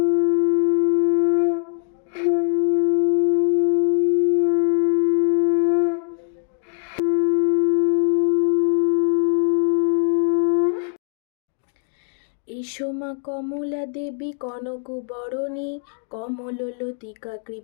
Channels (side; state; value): right; silent; digital silence